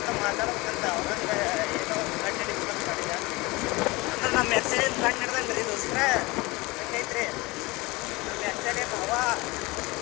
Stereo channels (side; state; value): right; quieter; 23.2 dB